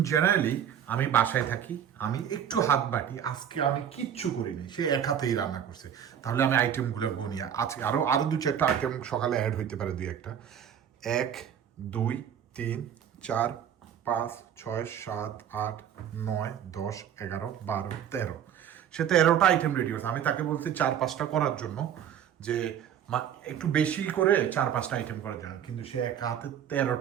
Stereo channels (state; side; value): quieter; left; 9.2 dB